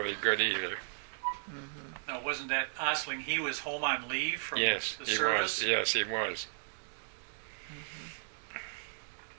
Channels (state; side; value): silent; left; digital silence